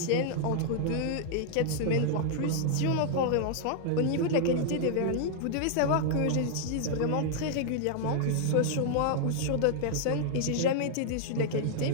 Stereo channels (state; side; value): different; both; correlation -0.01